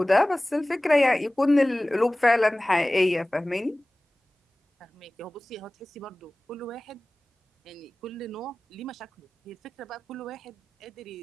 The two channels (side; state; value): both; normal; correlation 0.98